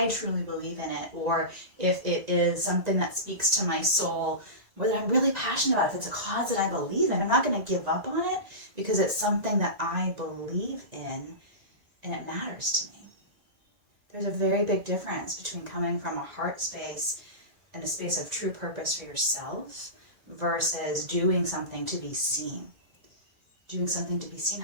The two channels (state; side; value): late; left; 2.0 ms